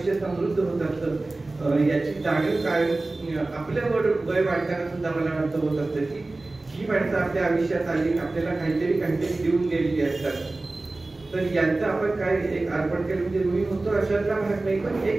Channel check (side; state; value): left; quieter; 3.1 dB